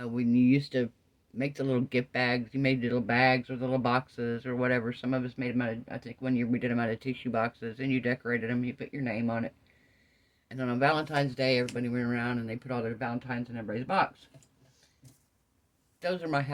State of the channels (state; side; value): identical; both; correlation 1.00